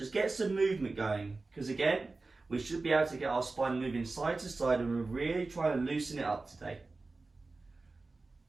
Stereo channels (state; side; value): quieter; left; 3.6 dB